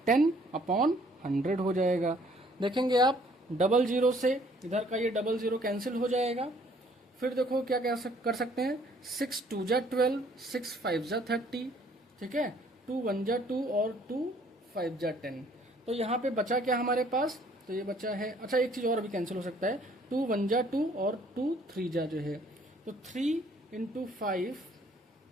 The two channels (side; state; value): both; normal; correlation 0.60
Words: 10 अपॉन 100 हो जाएगा। देखेंगे आप डबल जीरो से इधर का ये डबल जीरो कैंसिल हो जाएगा। फिर देखो क्या कर सकते हैं, 6 2 जा 12, 6 5 जा 30, ठीक है, 2 1 जा 2 और 2 5 जा 10। तो यहाँ पे बचा क्या हमारे पास, तो ये बचा है, अच्छा एक चीज और भी कैंसिल हो सकता है, 2 1 जा 2 और 2 3 जा जो है, तो 3 इंटू 5